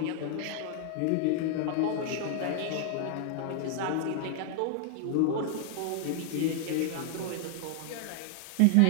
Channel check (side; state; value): both; different; correlation 0.00